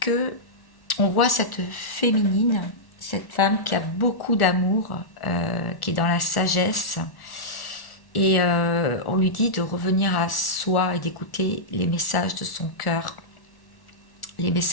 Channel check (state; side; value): late; right; 1.1 ms